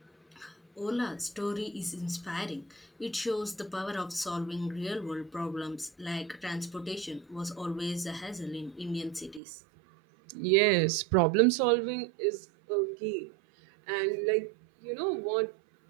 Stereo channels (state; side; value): drops out; left; at 9.4 s